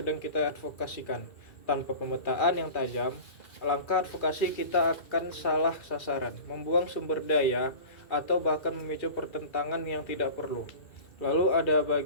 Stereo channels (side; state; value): right; late; 2.4 ms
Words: kita advokasikan. Tanpa pemetaan yang tajam, langkah advokasi kita akan salah sasaran, membuang sumber daya, atau bahkan memicu pertentangan yang tidak perlu. Lalu ada